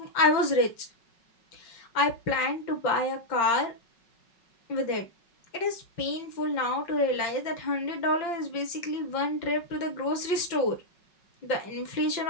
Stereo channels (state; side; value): late; right; 5.4 ms